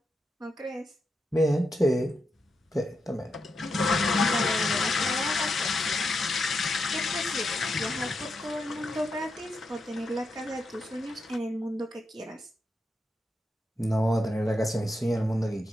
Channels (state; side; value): normal; both; correlation 0.84